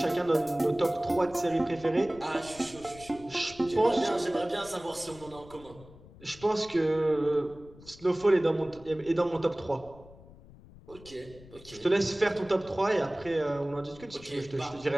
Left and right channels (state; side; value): noise; left; rumble, 21 dB below the sound